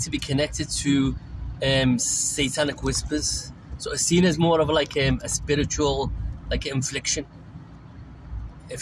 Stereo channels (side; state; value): both; identical; correlation 1.00